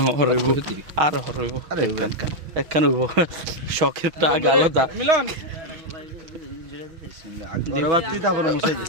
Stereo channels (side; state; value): left; late; 6.4 ms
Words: হরইব আর হরইব একখান হইব শখের টাক আলাদা মিলন গরবাতি তারপরে মুছাই